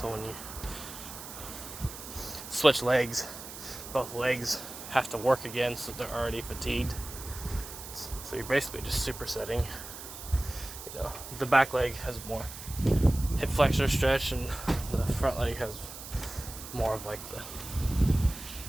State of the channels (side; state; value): right; noise; hiss, 12 dB below the sound